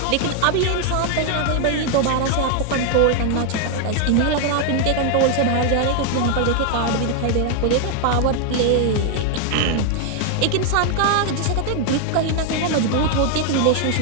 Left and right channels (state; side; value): different; both; correlation 0.00